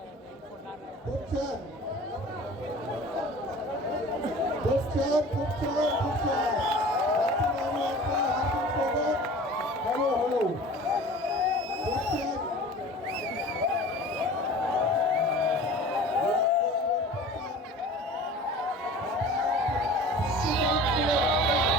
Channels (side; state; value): both; normal; correlation 0.41